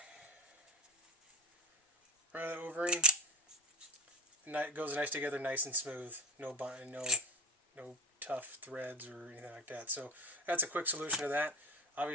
Run that O-ring. It goes nice together, nice and smooth. No tough threads or anything like that. So that's a quick solution to that.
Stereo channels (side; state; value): both; normal; correlation 0.27